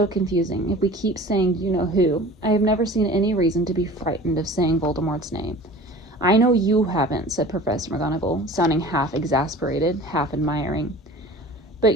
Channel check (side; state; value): both; normal; correlation 0.42